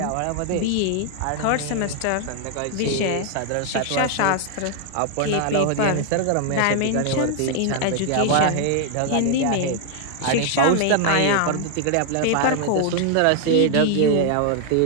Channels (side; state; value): both; different; correlation 0.00